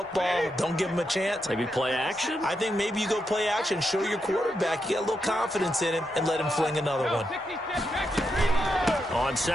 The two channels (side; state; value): both; normal; correlation 0.84